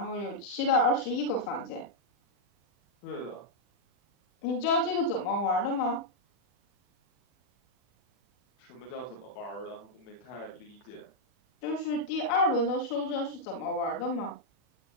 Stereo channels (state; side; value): late; right; 40 ms